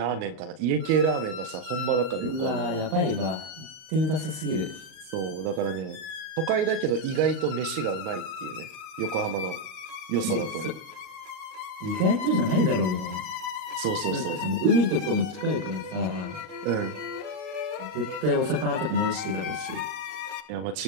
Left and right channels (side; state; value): left; late; 38 ms